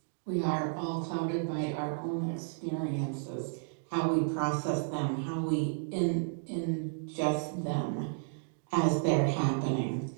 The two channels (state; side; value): silent; left; digital silence